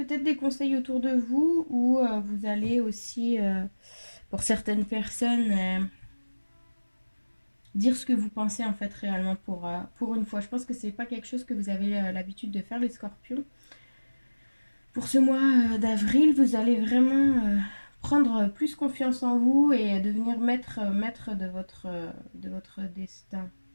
des conseils autour de vous ou vous allez aussi, pour certaines personnes, dire ce que vous pensez en fait réellement pour une fois. Je pense que c'est pas quelque chose que vous avez l'habitude de faire les scorpions. Pour ce mois d'avril, vous allez vraiment prendre plus confiance en vous et devenir maître de votre destin.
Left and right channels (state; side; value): inverted; both; correlation -1.00